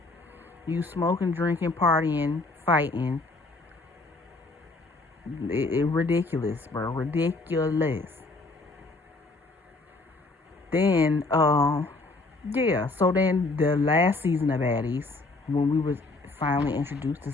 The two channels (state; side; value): quieter; right; 3.3 dB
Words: You smoking, drinking, partying, fighting. It ridiculous, bro. Ridiculous. Then, yeah. So then the last season of Baddies, when we was finally introduced to